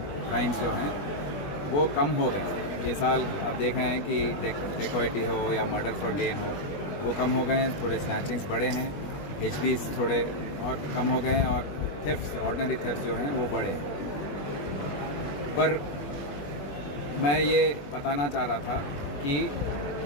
जो हैं वो कम हो गए। ये साल आप देख रहे हैं कि डकैती हो या मर्डर फॉर गेन हो, वो कम हो गए हैं। थोड़े स्नैचिंग्स बढ़े हैं, HBs थोड़े और कम हो गए हैं, और थेफ्ट, ऑर्डिनरी थेफ्ट जो हैं वो बढ़े। पर मैं ये बताना चाह रहा था कि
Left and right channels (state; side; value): late; right; 21 ms